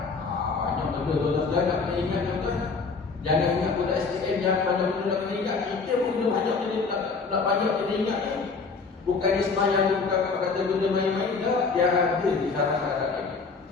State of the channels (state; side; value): quieter; right; 4.6 dB